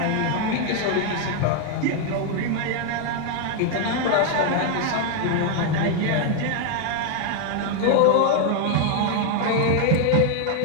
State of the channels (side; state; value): both; different; correlation 0.01